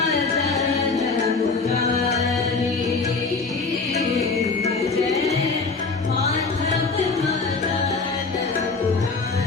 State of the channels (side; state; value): right; quieter; 4.2 dB